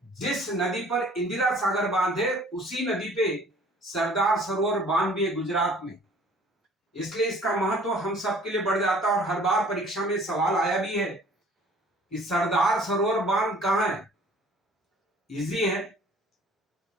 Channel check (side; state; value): both; normal; correlation 0.52